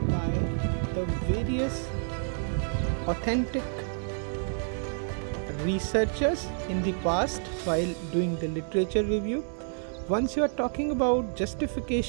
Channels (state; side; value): silent; left; digital silence